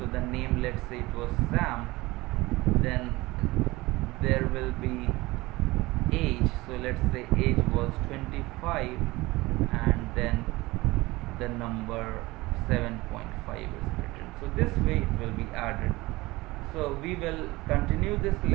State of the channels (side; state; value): left; quieter; 20.7 dB